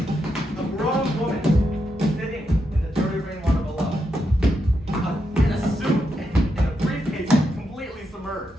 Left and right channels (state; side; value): normal; both; correlation 0.83